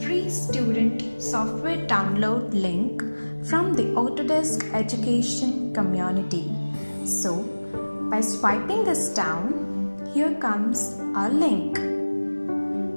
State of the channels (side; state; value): both; inverted; correlation -1.00